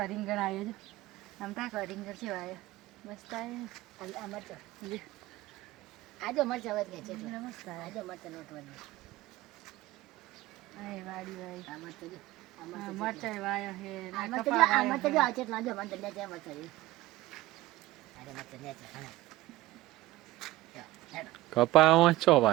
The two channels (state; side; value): quieter; left; 17.4 dB